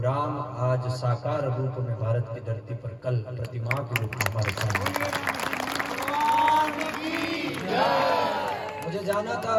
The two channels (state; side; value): identical; both; correlation 1.00